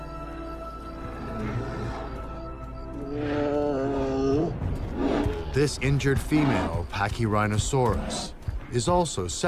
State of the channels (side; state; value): both; identical; correlation 1.00